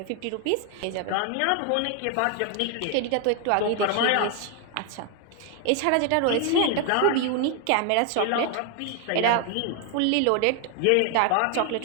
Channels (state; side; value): different; both; correlation 0.00